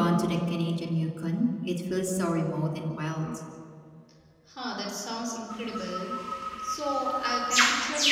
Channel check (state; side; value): identical; both; correlation 1.00